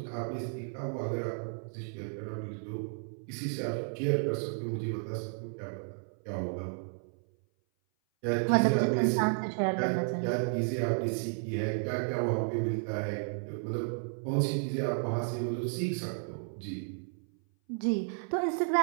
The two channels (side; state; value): left; silent; 56 dB below the other